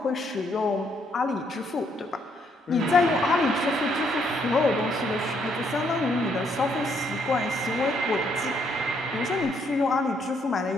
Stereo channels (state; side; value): normal; both; correlation 0.71